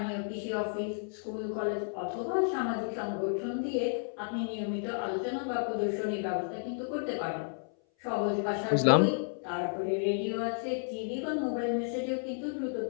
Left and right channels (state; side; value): silent; right; 56 dB below the other